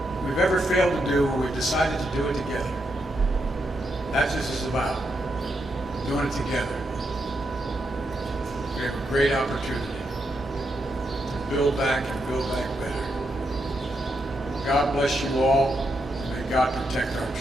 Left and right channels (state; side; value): normal; both; correlation 0.82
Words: we've ever failed to do when we've decided to do it together. That's what this is about, doing it together. We have a great opportunity. build back and build back better. God bless you all, and may God protect our